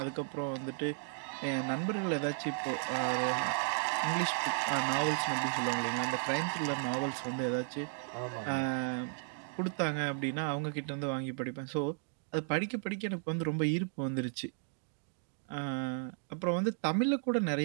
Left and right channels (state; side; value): silent; left; 55 dB below the other